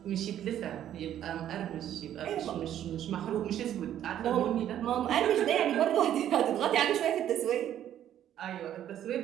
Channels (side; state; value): left; quieter; 11.0 dB